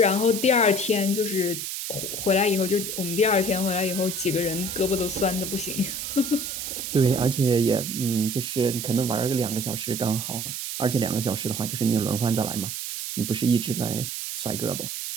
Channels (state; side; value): noise; right; hiss, 5 dB below the sound